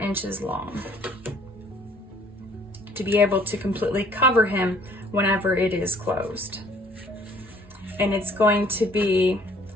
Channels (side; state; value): both; normal; correlation 0.58